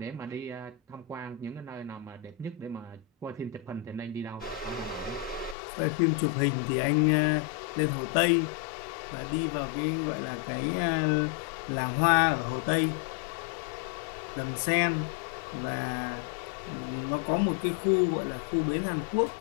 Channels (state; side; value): drops out; right; at 5.6 s